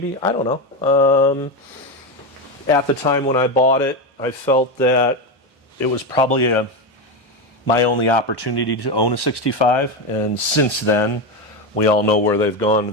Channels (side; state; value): both; normal; correlation 0.13